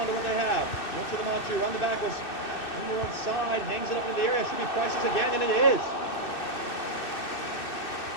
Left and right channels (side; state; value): right; late; 2.6 ms